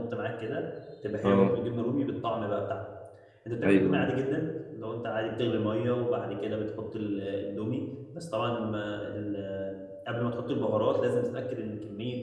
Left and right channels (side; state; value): both; identical; correlation 1.00